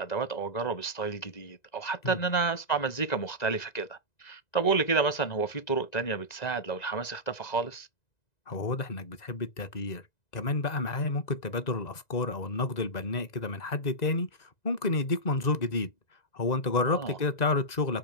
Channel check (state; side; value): late; right; 1.9 ms